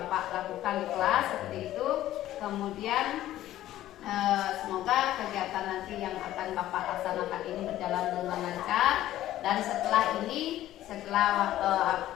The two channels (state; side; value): quieter; right; 13.8 dB